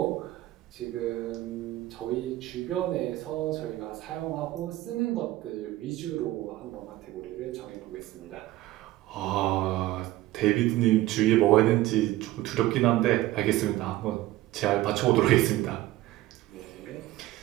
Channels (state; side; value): quieter; left; 16.5 dB